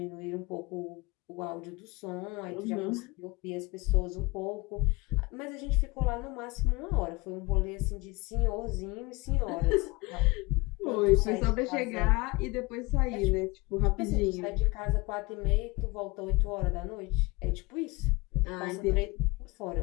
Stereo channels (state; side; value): quieter; right; 23.8 dB